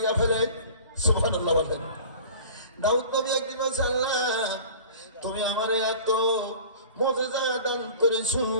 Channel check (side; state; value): both; inverted; correlation -0.42